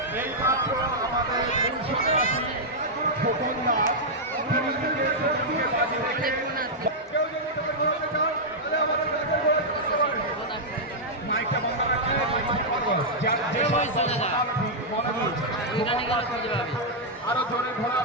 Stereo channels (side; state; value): both; normal; correlation -0.06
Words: এই মাত্র আমাদের খোকন দাস তিনি নিজের শরীরকে বাজি রেখে মাইকটা বন্ধ রাখলে আরো জোরে